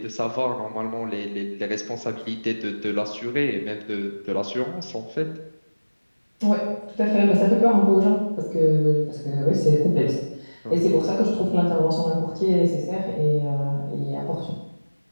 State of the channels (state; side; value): inverted; both; correlation -1.00